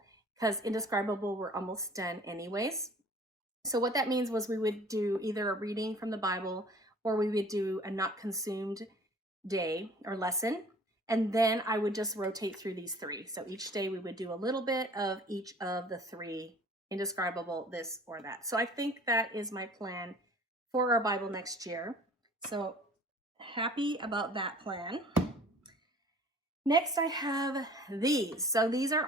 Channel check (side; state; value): both; normal; correlation 0.49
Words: because Indescribable we're almost done anyways. So what that means was we would do either a reading from the Bible, or we would do a not consumed day or lesson. And then I would just rotate through these 3. So each day we would do a little bit of each of the 3, Indescribable, this or that. So I think that is my plan for our Bible next year. So happy about that plan. Next, I have these. So these are